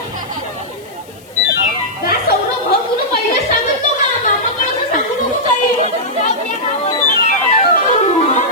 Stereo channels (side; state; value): left; noise; hiss, 26 dB below the sound